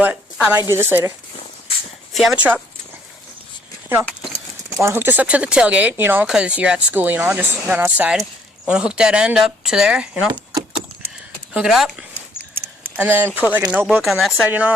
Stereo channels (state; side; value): normal; both; correlation 0.64